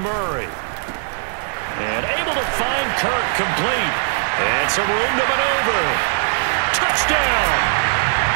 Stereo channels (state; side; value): silent; left; digital silence